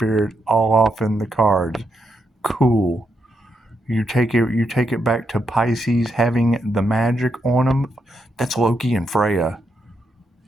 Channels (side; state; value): both; normal; correlation 0.81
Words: all off in the cards. Cool. You take it back to Pisces having the magic on them. That's Loki and Freya.